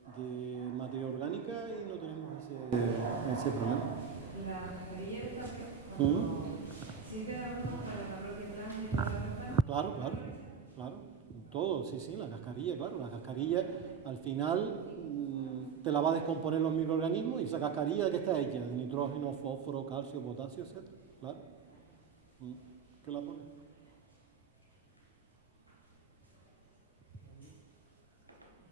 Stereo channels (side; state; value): left; quieter; 6.5 dB